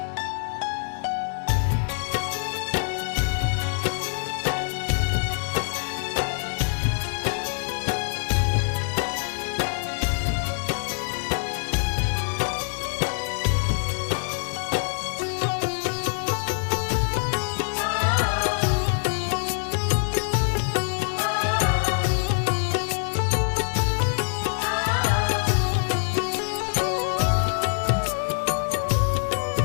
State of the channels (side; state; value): right; silent; 62 dB below the other